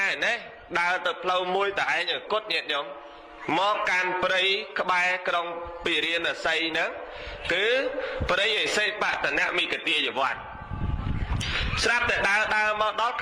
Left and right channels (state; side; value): identical; both; correlation 1.00